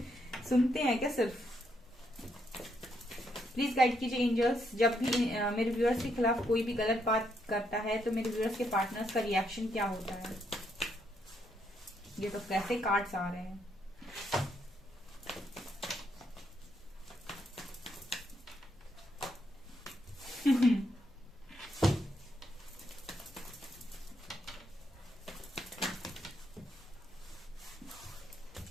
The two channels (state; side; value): normal; both; correlation 0.76